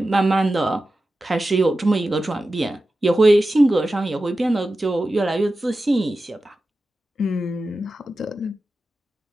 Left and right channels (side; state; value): both; normal; correlation 0.93